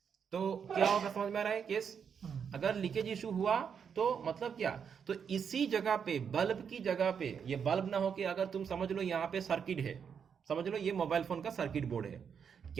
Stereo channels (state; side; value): quieter; left; 7.1 dB